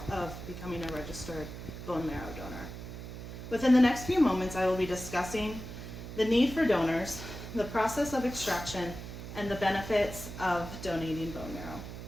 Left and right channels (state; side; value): noise; right; hum, 10 dB below the sound